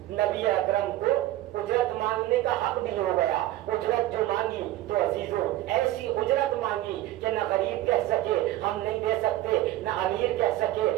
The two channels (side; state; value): left; quieter; 15.2 dB